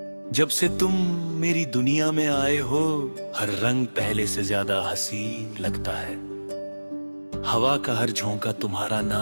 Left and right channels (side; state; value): both; inverted; correlation -1.00